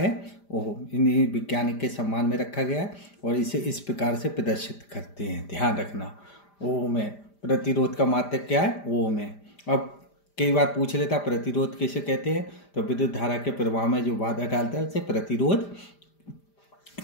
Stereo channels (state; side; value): late; right; 5.0 ms